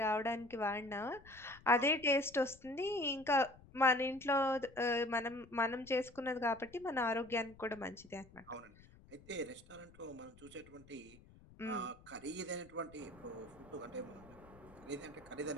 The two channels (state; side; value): noise; left; rumble, 23 dB below the sound